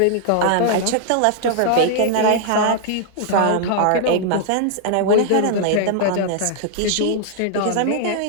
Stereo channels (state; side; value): different; both; correlation -0.01